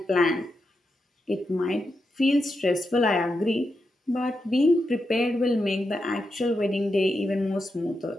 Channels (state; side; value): normal; both; correlation 0.86